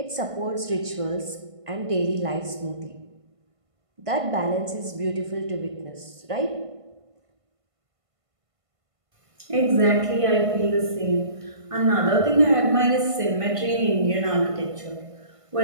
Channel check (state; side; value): late; left; 1.5 ms